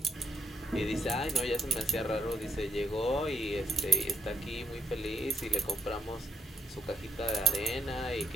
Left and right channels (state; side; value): normal; both; correlation 0.69